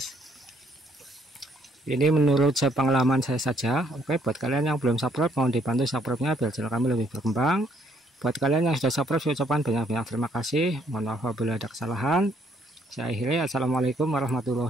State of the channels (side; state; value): both; normal; correlation 0.68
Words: Ini menurut pengalaman saya saja. Oke, buat kalian yang belum subscribe, mohon dibantu subscribe-nya biar channel kami lebih berkembang. Buat kalian yang sudah subscribe, saya ucapkan banyak-banyak terima kasih. Mohon maaf apabila ada kesalahan. Saya akhiri, assalamualaikum